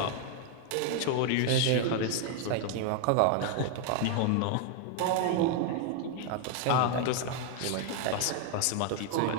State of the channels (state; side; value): different; both; correlation 0.00